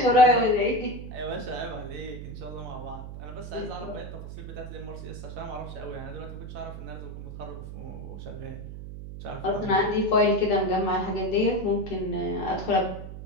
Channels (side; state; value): right; noise; hum, 10 dB below the sound